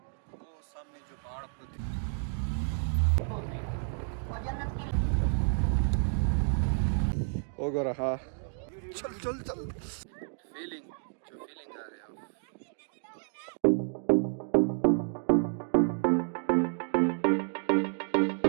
वो सामने जो पहाड़ आपको होगा रहा। चल चल चल, फीलिंग आ रही है।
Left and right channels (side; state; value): left; silent; 57 dB below the other